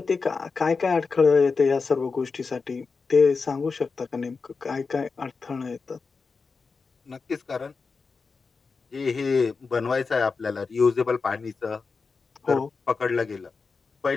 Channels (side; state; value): right; quieter; 4.7 dB